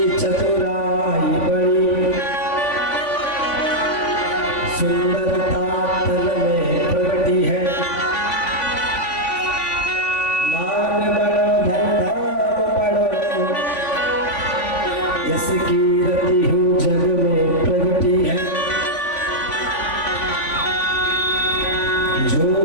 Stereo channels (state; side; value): late; right; 3.5 ms